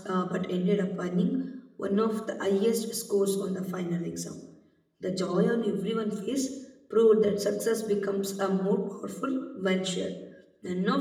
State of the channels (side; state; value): both; identical; correlation 1.00